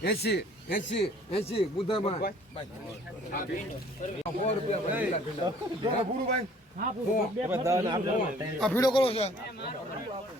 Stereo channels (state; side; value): normal; both; correlation 0.55